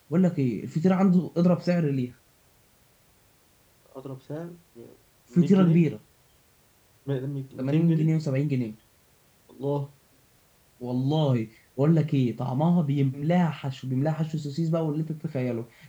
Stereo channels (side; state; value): both; identical; correlation 1.00